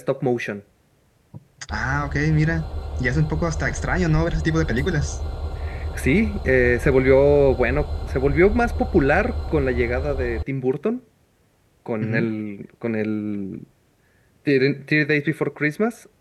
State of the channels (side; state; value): both; identical; correlation 1.00